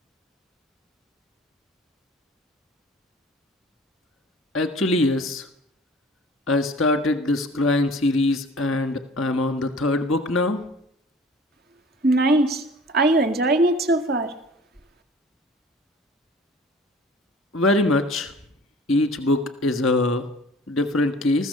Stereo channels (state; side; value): normal; both; correlation 0.47